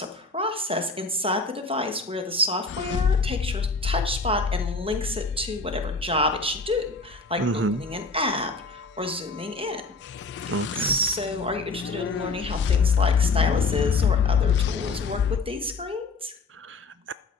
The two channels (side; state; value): right; quieter; 3.7 dB